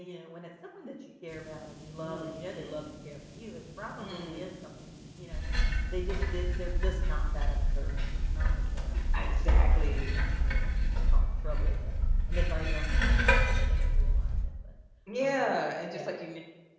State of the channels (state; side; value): identical; both; correlation 1.00